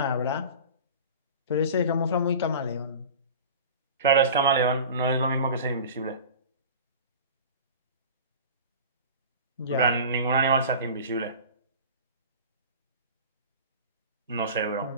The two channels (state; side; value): inverted; both; correlation -0.36